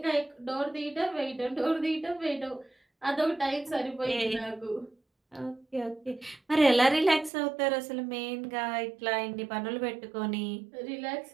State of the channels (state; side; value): drops out; left; at 7.3 s